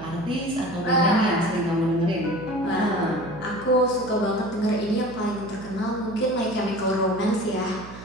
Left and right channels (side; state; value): right; noise; hum, 15 dB below the sound